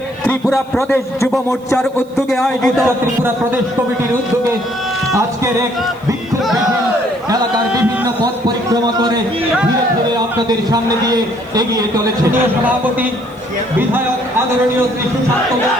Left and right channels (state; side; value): noise; right; hiss, 29 dB below the sound